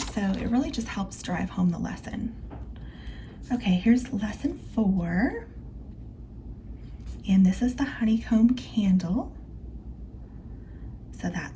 So it really just helps drive home the lesson. Okay, here's lesson 4. And this is the honeycomb candle. So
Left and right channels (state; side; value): identical; both; correlation 1.00